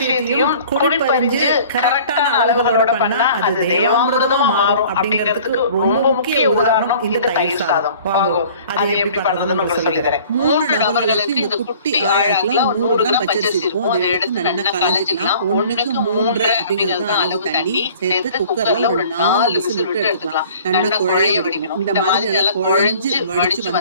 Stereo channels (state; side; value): inverted; both; correlation -0.49